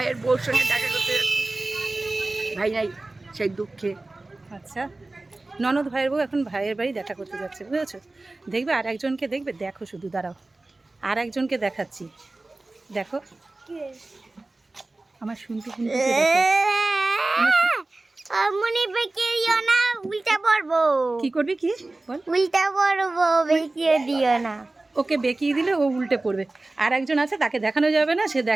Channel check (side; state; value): left; quieter; 3.0 dB